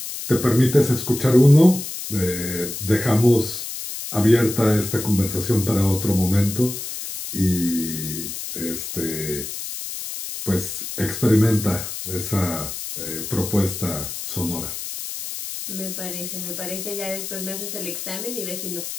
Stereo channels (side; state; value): left; noise; hiss, 7 dB below the sound